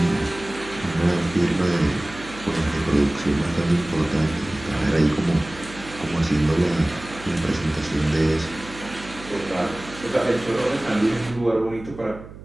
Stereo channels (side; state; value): right; noise; hum, 16 dB below the sound